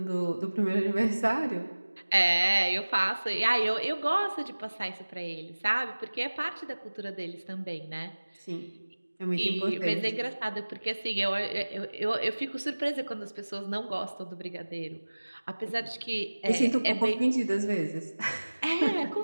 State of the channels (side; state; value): both; inverted; correlation -1.00